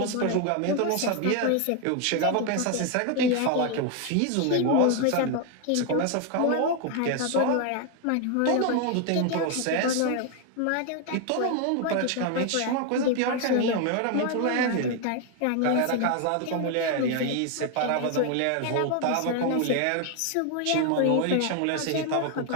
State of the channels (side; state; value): both; different; correlation 0.01